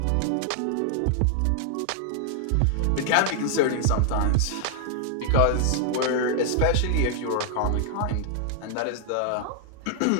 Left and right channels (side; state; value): both; different; correlation 0.00